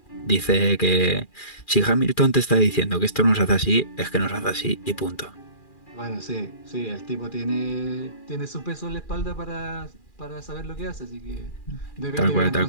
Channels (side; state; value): right; late; 2.4 ms